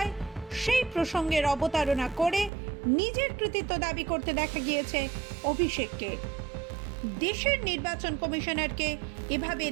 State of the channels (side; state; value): left; drops out; at 2.5 s